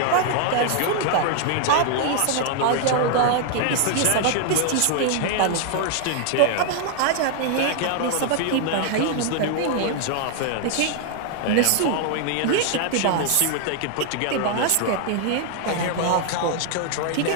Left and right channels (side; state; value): both; different; correlation 0.00